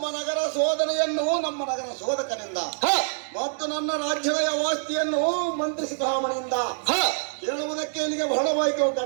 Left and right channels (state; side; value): silent; left; digital silence